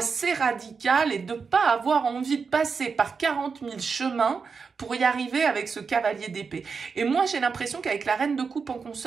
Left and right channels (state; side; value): quieter; left; 5.3 dB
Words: radical et de ne pas avoir envie de passer par 40 000 chemins pour y arriver avec ce cavalier d'épée. Et moi, j'ai l'impression qu'avec la reine de coupe en